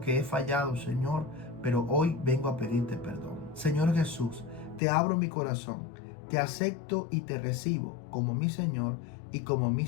he fallado, Señor, pero hoy vengo a pedirte perdón. Señor Jesús, te abro mi corazón, te acepto y te recibo como mi Señor y como mi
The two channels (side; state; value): right; drops out; at 4.8 s